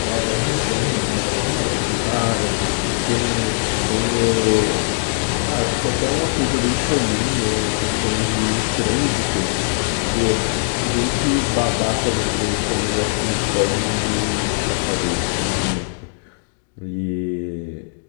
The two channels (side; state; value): right; silent; digital silence